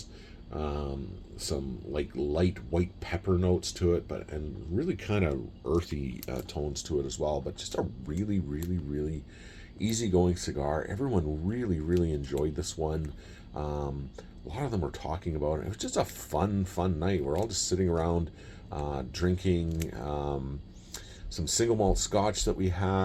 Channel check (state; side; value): identical; both; correlation 1.00